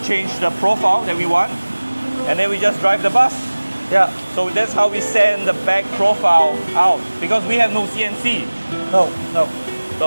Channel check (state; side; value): inverted; both; correlation -1.00